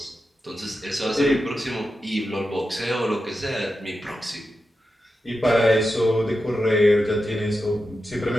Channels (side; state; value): both; normal; correlation 0.90